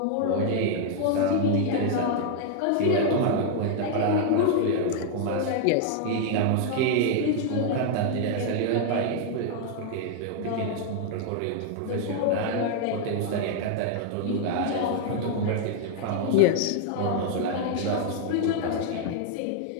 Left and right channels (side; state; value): both; different; correlation 0.00